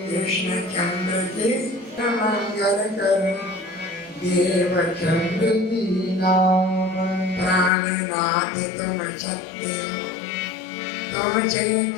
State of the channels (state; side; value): drops out; right; at 7.7 s